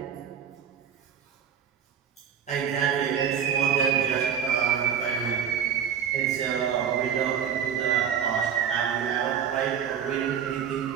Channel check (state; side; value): quieter; left; 8.2 dB